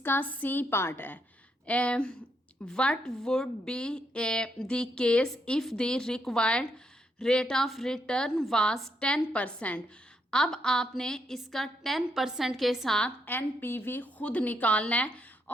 सी पार्ट है। What would be the case if the required rate of return was 10%। अब आपने इसका 10% के साथ एनपीवी खुद निकालना है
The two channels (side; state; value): both; normal; correlation 0.78